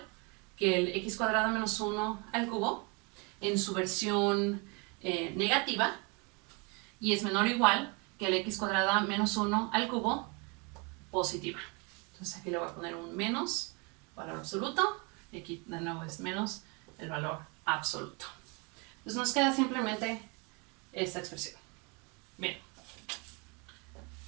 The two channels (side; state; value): left; quieter; 31.1 dB